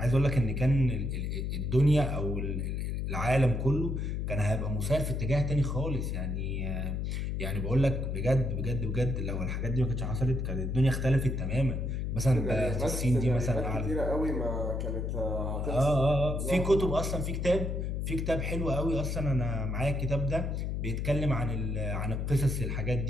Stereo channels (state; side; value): noise; left; hum, 1 dB below the sound